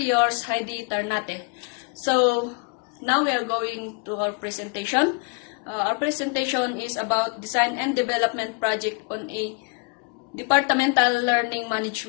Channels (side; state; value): right; quieter; 32.9 dB